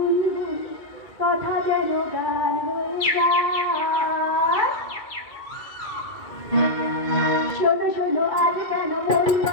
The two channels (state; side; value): late; right; 2.3 ms